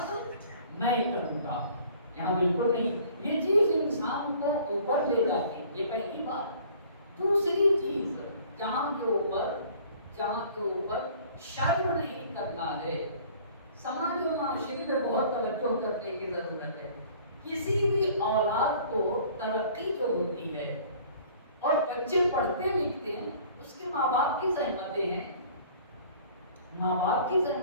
میں کروں گا۔ یہاں بالکل نہیں، یہ چیز انسان کو اوپر لے جاتی ہے، یہ پہلی بات۔ دوسری چیز، جہاں کے اوپر شرم نہیں کرنا ہے، سماج و معاشرے میں بہت توجہ کرنے کی ضرورت ہے۔ کسی بھی اولاد کو ترقی جو ہوتی ہے اور بچے پڑھتے لکھتے ہیں، اس کے ماں باپ کی زحمتیں ہیں، ماں باپ کی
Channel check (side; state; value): both; inverted; correlation -0.51